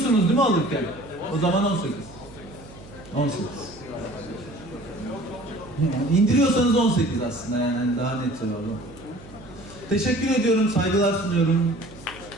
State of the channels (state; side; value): noise; right; hum, 19 dB below the sound